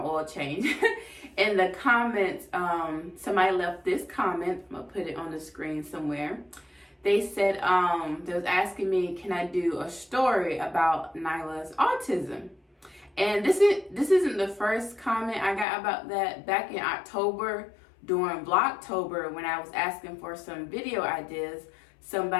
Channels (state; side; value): drops out; right; at 15.7 s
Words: change, in the comments, somebody left this comment. I'm gonna put it on the screen somewhere. They said, they was asking me, can I do a story about Nyla's autism? And this isn't the first comment I got about that. Back in October, during Vlogtober, when I was asking for some video ideas,